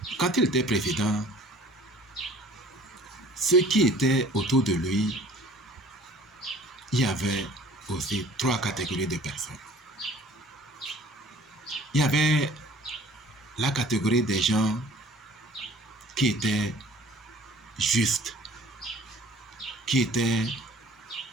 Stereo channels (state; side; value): normal; both; correlation 0.50